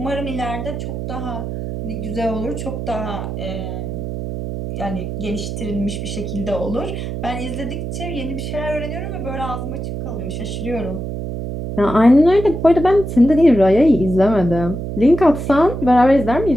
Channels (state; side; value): noise; right; hum, 5 dB below the sound